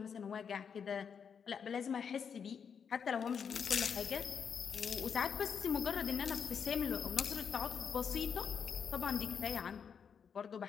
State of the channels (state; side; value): quieter; right; 6.9 dB